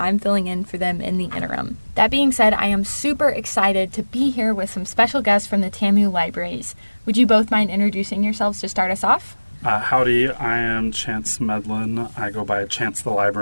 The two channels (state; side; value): inverted; both; correlation -1.00